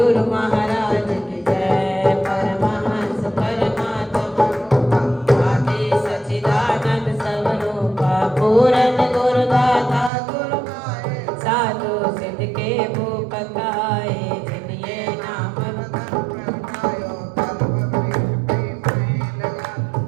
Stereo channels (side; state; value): left; drops out; at 10.1 s